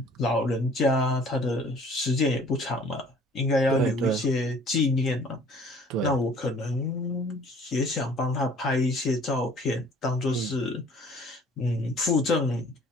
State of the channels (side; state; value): both; normal; correlation 0.53